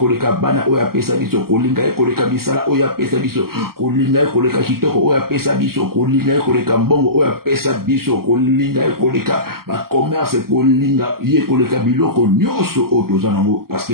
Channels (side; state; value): left; late; 0.93 ms